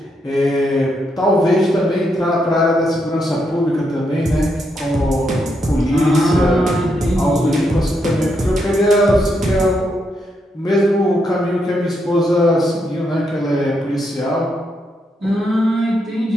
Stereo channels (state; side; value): normal; both; correlation 0.80